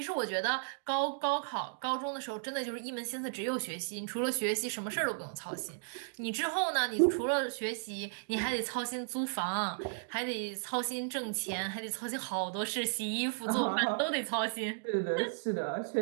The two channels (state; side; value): silent; left; digital silence